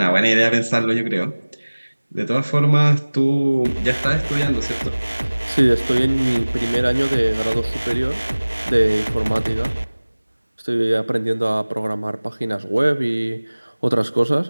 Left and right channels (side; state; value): both; inverted; correlation -1.00